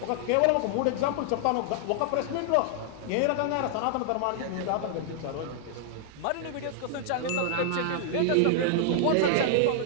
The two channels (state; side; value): different; both; correlation -0.01